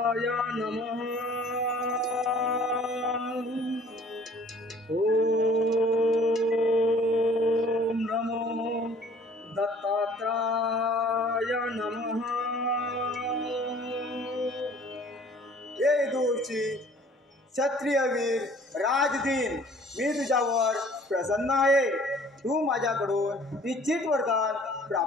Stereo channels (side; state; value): both; normal; correlation 0.53